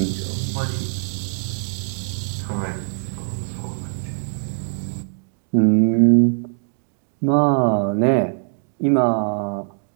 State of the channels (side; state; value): left; silent; 63 dB below the other